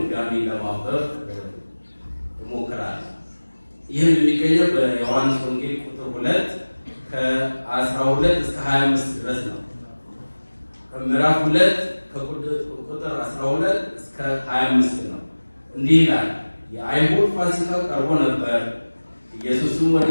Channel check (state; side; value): inverted; both; correlation -1.00